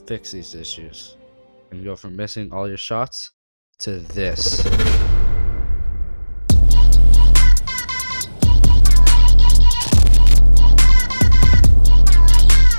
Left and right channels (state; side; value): inverted; both; correlation -1.00